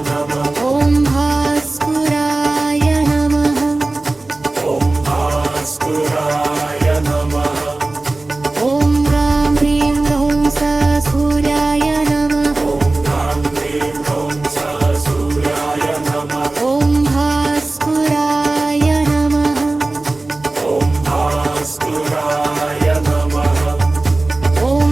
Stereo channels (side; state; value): left; quieter; 3.1 dB